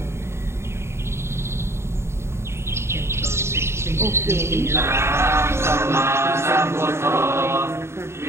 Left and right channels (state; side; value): late; left; 0.13 ms